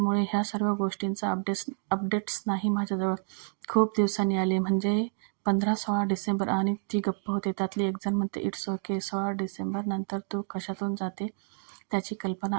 ह्या सर्व गोष्टींचा अपडेट्स नाही माझ्याजवळ. खूप दिवसांनी आले, म्हणजे 15-16 डिसेंबर. आणि ती गप्प होते. त्यातली एक जण म्हणते, इट्स ओके, 16 डिसेंबर नंतर तू कशातून जाते त्याची कल्पना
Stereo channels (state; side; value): silent; left; digital silence